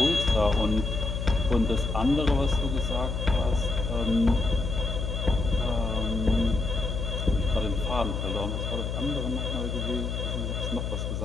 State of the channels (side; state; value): left; noise; hum, 3 dB below the sound